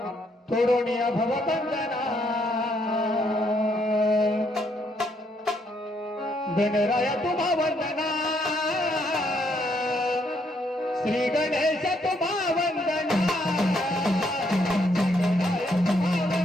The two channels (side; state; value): both; normal; correlation 0.72